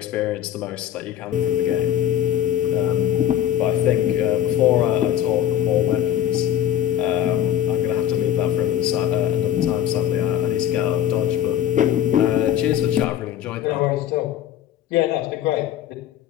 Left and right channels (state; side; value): quieter; right; 11.0 dB